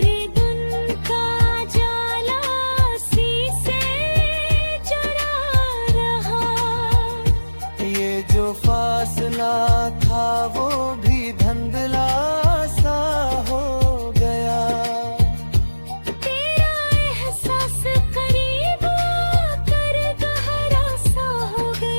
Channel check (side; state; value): both; inverted; correlation -1.00